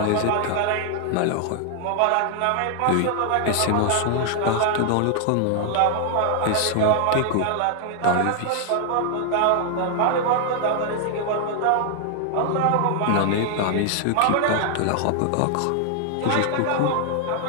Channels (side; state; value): both; different; correlation 0.00